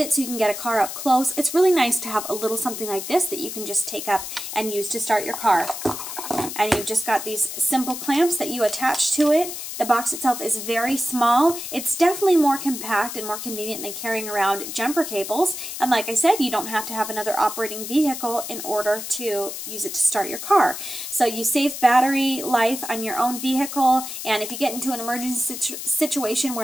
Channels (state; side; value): noise; left; hiss, 7 dB below the sound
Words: so you can get a car up close, it's really nice to have a little something like this that you can just take up and use to start your car. And you've just got these simple clamps that you attach to it. The box itself is very small. It's definitely more compact and more convenient than carrying around jumper cables. And like I said, you don't have to have another operating vehicle in order to use it to start your car. So you save battery life on your own vehicle, and if you get into an emergency situation